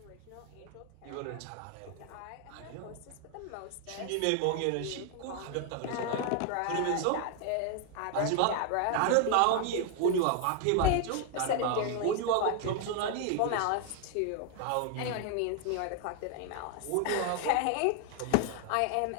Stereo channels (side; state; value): both; different; correlation 0.00